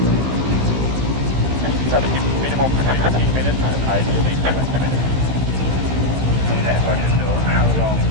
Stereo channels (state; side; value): late; left; 15 ms